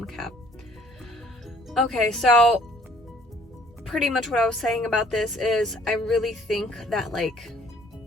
Okay, so pretty much what I was saying about this is I really think that like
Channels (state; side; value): normal; both; correlation 0.57